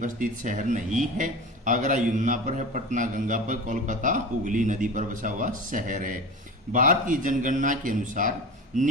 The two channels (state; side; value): normal; both; correlation 0.31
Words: स्थित शहर नहीं है। आगरा यमुना पर है। पटना गंगा पर। कोलकाता हुगली नदी पर बसा हुआ शहर है। भारत की जनगणना के अनुसार